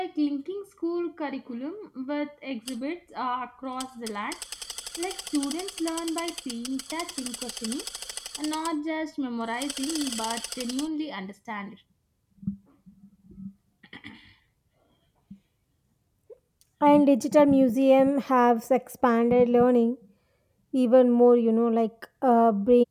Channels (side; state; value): both; identical; correlation 1.00